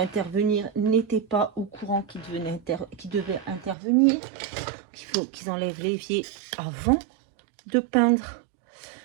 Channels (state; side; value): drops out; left; at 3.8 s